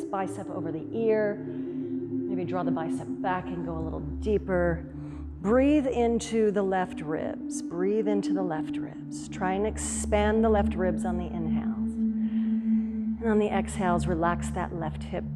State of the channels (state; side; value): identical; both; correlation 1.00